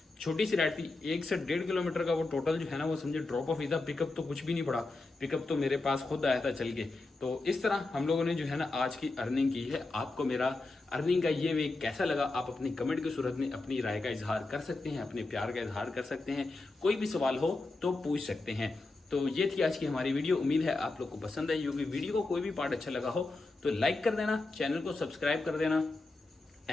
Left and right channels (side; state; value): right; quieter; 3.3 dB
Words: छोटी सी राइड थी 1 से 1.5 किलोमीटर का। वो टोटल जो है ना वो समझे ड्रॉप ऑफ ही था, पिकअप तो कुछ भी नहीं पड़ा, पिकअप तो मेरे पास खुद आया था चल के। तो इस तरह हम लोगों ने जो है ना आज की अर्निंग की है। आपको मेरा अर्निंग का ये वे कैसा लगा आप अपनी कमेंट की सूरत में अपनी राय का इजहार कर सकते हैं, अपने प्यार का इजहार कर सकते हैं। कोई भी सवाल हो तो पूछ सकते हैं। तो ये थी आज की हमारी वीडियो। उम्मीद है आप लोग को पसंद आई होगी। वीडियो को कोई भी पार्ट अच्छा लगा हो तो लाइक कर देना, चैनल को सब्सक्राइब कर देना।